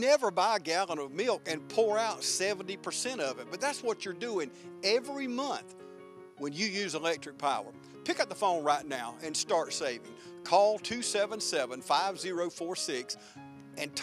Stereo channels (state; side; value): identical; both; correlation 1.00